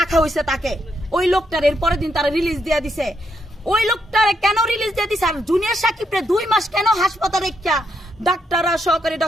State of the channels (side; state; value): both; normal; correlation 0.78